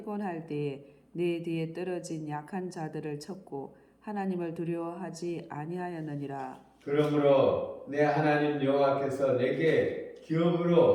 때에 내 뒤에 떨어진 약한 자들을 쳤고 하나님을 두려워하지 아니하였느니라. 그러므로 내 하나님 여호와께서 내게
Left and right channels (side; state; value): both; identical; correlation 1.00